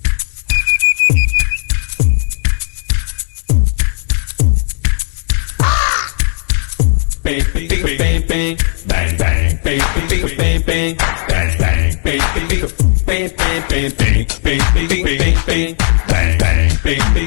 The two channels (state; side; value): silent; right; 63 dB below the other